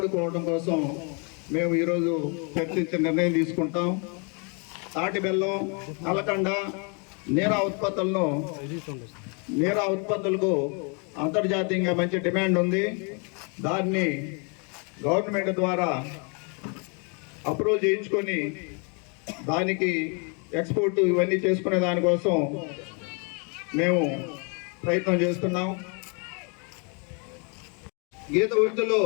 కోసం మేము ఈరోజు చర్చించే నిర్ణయం తీసుకుంటాం. తాటి బెల్లం, కలకండ, నీరా ఉత్పత్తులకు అంతర్జాతీయంగా మంచి డిమాండ్ ఉంది. దాన్ని గవర్నమెంట్ ద్వారా అప్రూవల్ చేయించుకొని దానికి ఎక్స్పోర్ట్ ఇవన్నీ చేసుకునే దానికోసం మేము ప్రయత్నం చేస్తున్నాం. గీత వృత్తిలో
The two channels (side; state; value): right; quieter; 35.6 dB